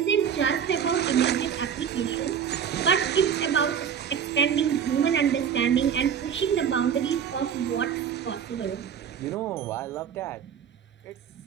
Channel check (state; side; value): quieter; left; 8.1 dB